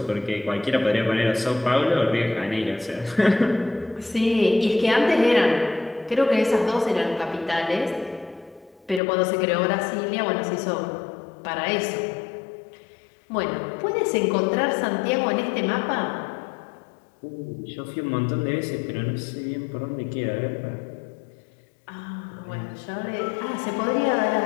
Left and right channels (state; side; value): drops out; right; at 9.0 s